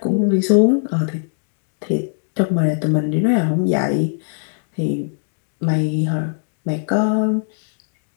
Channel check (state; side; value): silent; right; digital silence